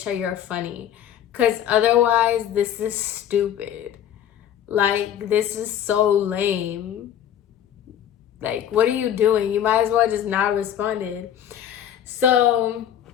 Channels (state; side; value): quieter; right; 10.1 dB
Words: you're funny. Because otherwise, this is stupid. Like, this is so lame. Like, what are you doing? You might as well just not responded. So